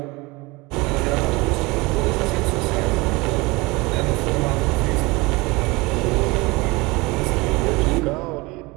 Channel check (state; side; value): quieter; left; 24.0 dB